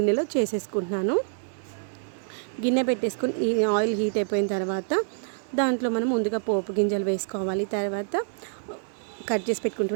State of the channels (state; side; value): silent; left; digital silence